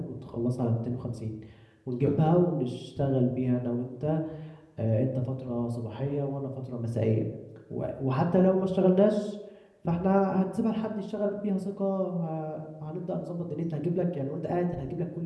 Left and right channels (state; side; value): identical; both; correlation 1.00